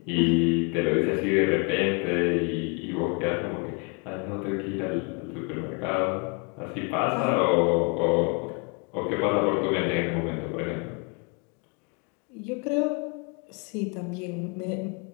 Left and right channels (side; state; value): right; quieter; 33.9 dB